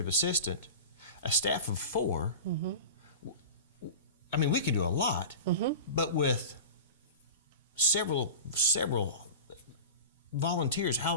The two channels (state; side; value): inverted; both; correlation -0.33